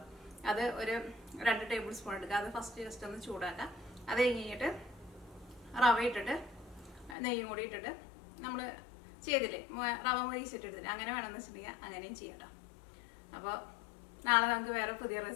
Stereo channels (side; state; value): right; drops out; at 7.2 s